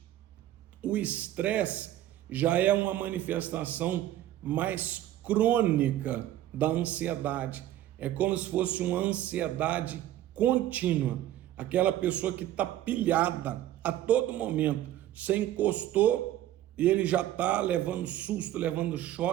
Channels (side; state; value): left; quieter; 13.0 dB